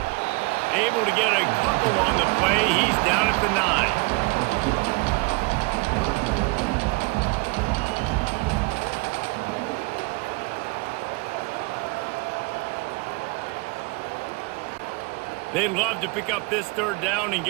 Able to get a couple on the play. He's down at the 9. They'd love to pick up this third down and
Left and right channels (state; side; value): quieter; left; 28.2 dB